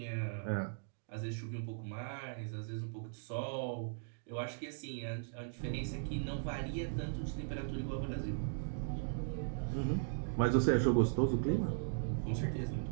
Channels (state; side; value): silent; left; digital silence